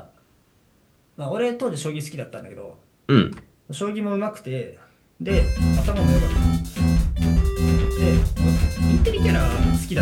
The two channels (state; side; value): identical; both; correlation 1.00